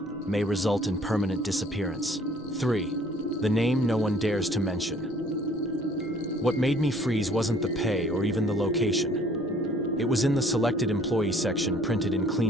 may result in permanent disappearance. 3. The name no one dares to mention. What made me freeze wasn't the pay or even the location. It was in the selected employee section, printed in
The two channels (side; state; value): both; normal; correlation 0.57